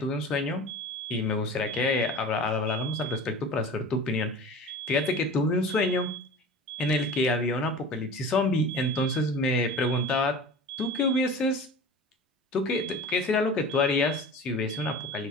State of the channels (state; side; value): normal; both; correlation 0.37